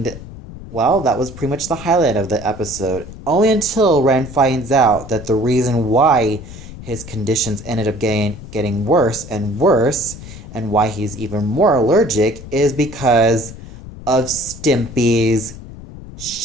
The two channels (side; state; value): left; noise; rumble, 14 dB below the sound